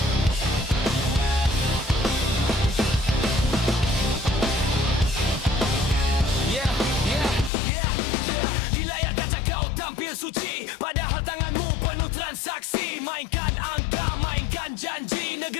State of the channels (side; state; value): right; drops out; at 7.5 s